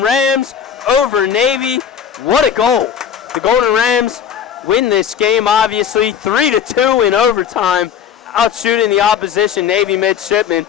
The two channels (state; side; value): quieter; right; 8.3 dB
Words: Rams over Navy. What a goal. The Golden Rams win this game, obviously, 3-2 in overtime, outshooting the opposition Navy midshipmen.